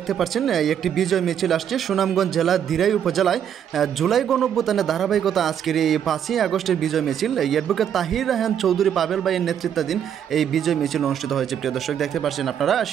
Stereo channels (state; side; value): quieter; left; 9.1 dB